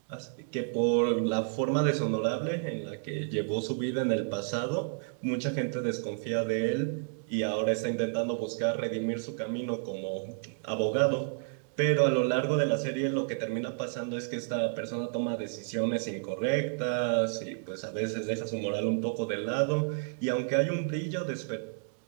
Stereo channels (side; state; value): left; silent; digital silence